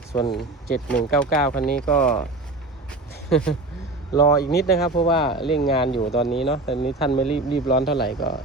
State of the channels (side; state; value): left; quieter; 3.0 dB